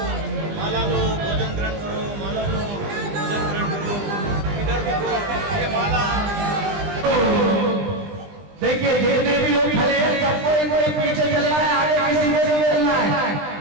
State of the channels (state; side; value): late; left; 20 ms